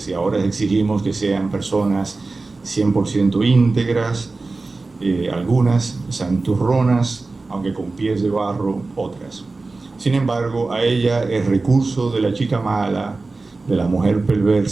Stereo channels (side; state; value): left; quieter; 3.6 dB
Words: ahora exigimos que sean personas 100% íntegras, algunas santurronas, aunque con pies de barro, otras. Sin embargo, a ella el recurso de la chica mala, de la mujer